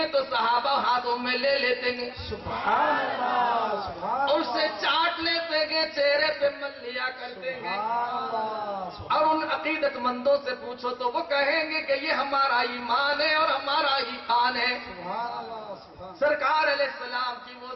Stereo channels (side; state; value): both; identical; correlation 1.00